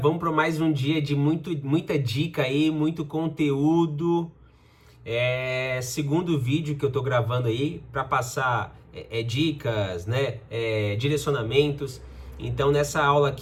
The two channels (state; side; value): identical; both; correlation 1.00